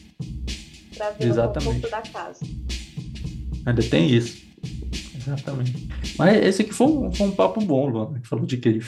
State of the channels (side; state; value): both; identical; correlation 1.00